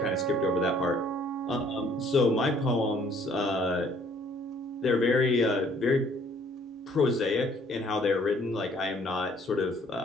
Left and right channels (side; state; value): both; normal; correlation 0.61